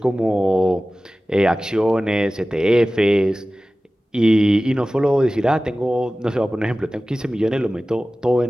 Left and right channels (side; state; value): both; normal; correlation 0.96